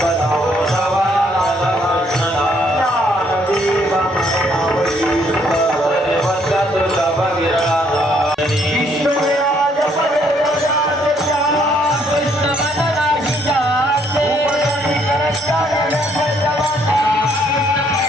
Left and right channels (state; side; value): normal; both; correlation 0.68